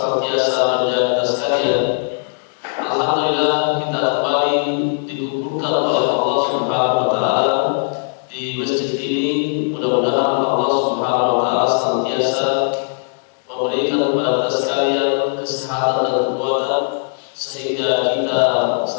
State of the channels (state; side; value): silent; right; digital silence